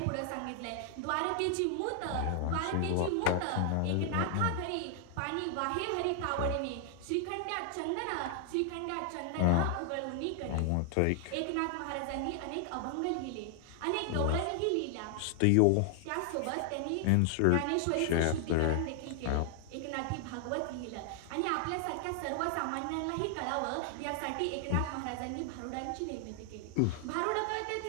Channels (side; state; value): both; different; correlation 0.00